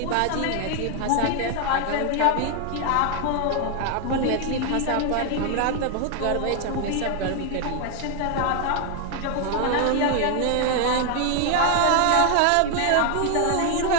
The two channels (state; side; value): different; both; correlation 0.00